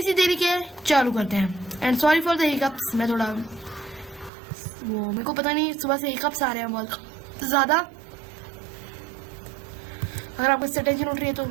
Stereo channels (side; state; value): left; drops out; at 4.3 s